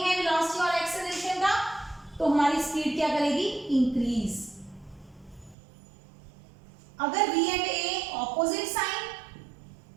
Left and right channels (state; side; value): drops out; left; at 5.6 s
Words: है वेलोसिटी और एक्सेलरेशन का, तो हमारी स्पीड क्या करेगी, इंक्रीज। अगर V and A opposite sign,